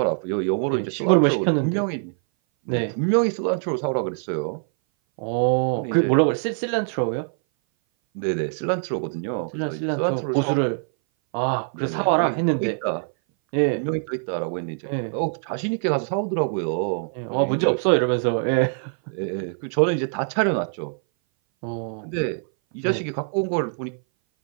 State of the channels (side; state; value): left; silent; 59 dB below the other